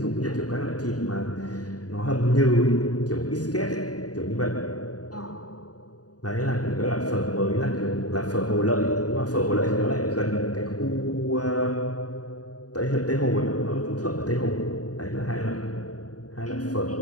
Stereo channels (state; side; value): late; right; 0.68 ms